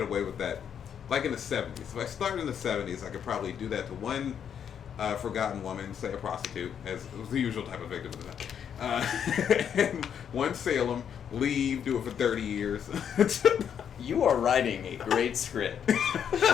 away with that. Like in the 70s. If I started in the 70s, I could probably do that to one forgotten woman, say a prostitute, as was the usual type of victim at the time. And one Salem, leave, do it for 30 years. You are writing a great script,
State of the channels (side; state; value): right; quieter; 8.3 dB